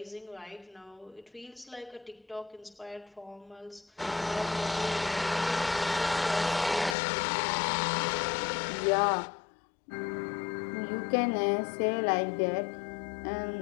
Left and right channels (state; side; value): drops out; right; at 7.0 s